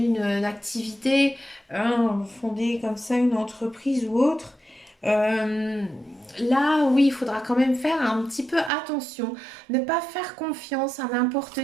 activité, fonder comme ça une entreprise ou autre. Euh, Là, oui, il faudra quand même faire un petit peu attention. Ne pas faire confiance à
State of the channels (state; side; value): drops out; left; at 8.7 s